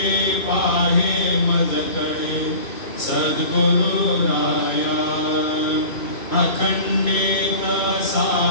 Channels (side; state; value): right; late; 2.5 ms